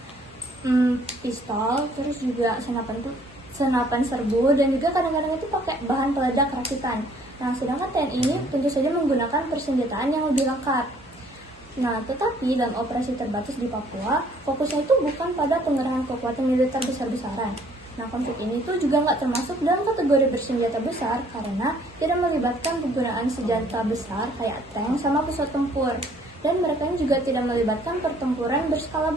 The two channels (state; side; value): normal; both; correlation 0.60